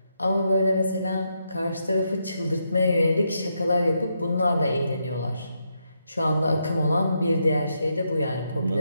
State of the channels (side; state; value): both; inverted; correlation -0.81